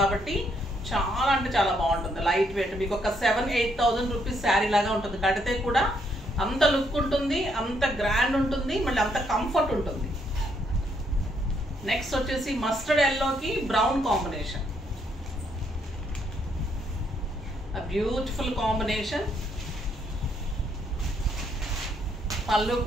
చాలా అంటే చాలా బాగుంటుంది. లైట్ వెయిట్, మీకు ఒక 7-8,000 రూపీస్ శారీ లాగా ఉంటుంది. కడితే కూడా అంత లుక్ ఉంటుంది, అంత గ్రాండ్ ఉంటుంది, మళ్ళీ అంత కంఫర్ట్ ఉంటుంది. నెక్స్ట్ వచ్చేసి మస్టర్డ్ ఎల్లోకి బ్రౌన్ కాంబినేషన్. Beautiful combination. పళ్ళు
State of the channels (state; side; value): normal; both; correlation 0.73